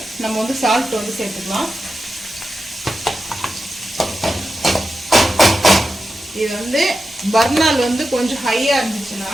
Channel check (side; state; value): both; normal; correlation 0.91